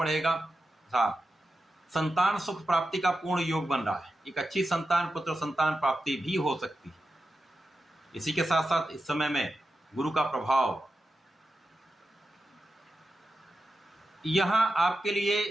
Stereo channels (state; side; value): normal; both; correlation 0.90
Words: संतान सुख प्राप्ति का पूर्ण योग बन रहा है। एक अच्छी संतान, पुत्र संतान प्राप्ति भी हो सकती है। इसी के साथ साथ इस समय में गुरु का प्रभाव यहां आपके लिए